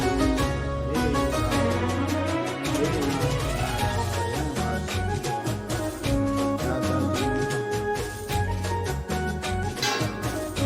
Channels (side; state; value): both; identical; correlation 1.00